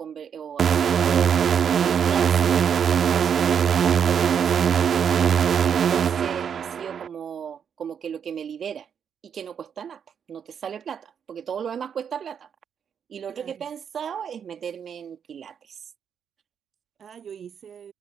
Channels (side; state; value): left; quieter; 7.7 dB